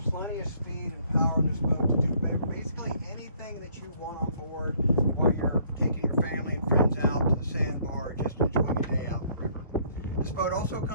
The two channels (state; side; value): inverted; both; correlation -0.63